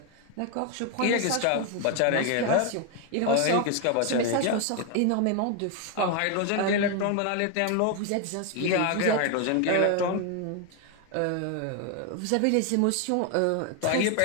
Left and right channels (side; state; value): both; different; correlation 0.01